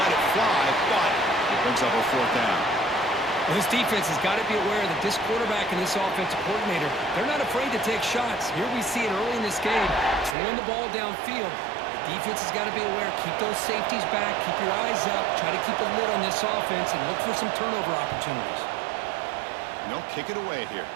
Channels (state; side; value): drops out; left; at 10.4 s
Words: it fly, but it brings up a 4th down. Well, this defense has got to be aware that this quarterback and this offensive coordinator, they're not afraid to take shots. Here we see it early in this game, throwing the ball downfield. The defense has got to be aware. Keep those safeties back. Keep your eyes up. Try to keep a lid on this offense and look for some turnover opportunities. No, kick it away here.